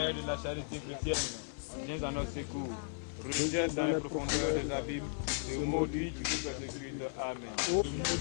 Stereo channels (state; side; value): silent; right; 54 dB below the other